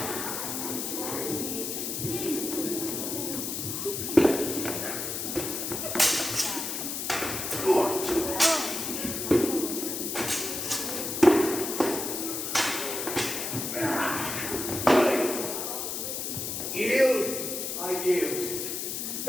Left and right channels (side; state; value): left; noise; hiss, 3 dB below the sound